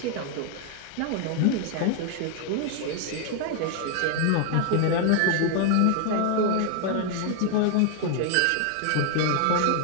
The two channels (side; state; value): both; different; correlation 0.00